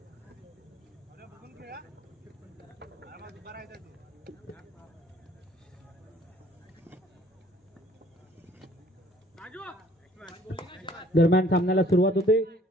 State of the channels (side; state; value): both; normal; correlation 0.57